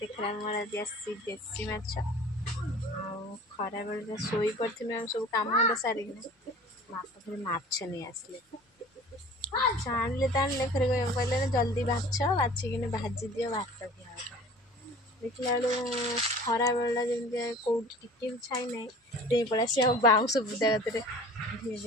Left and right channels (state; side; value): normal; both; correlation 0.44